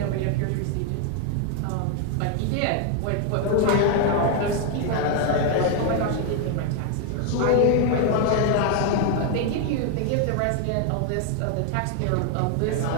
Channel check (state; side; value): different; both; correlation 0.01